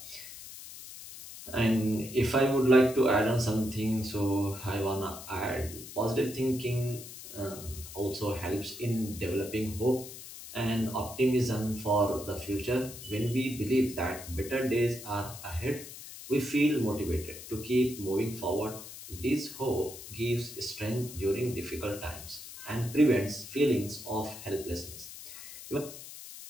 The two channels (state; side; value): noise; left; hiss, 13 dB below the sound